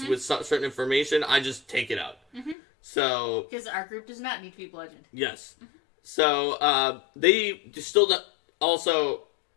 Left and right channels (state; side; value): drops out; right; at 2.6 s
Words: with certain information, I just take it out. So, because our group does not need to be bludgeoned. Yes. So they still also,